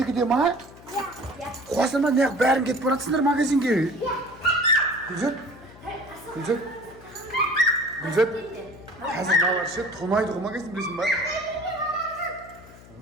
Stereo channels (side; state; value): left; noise; hum, 21 dB below the sound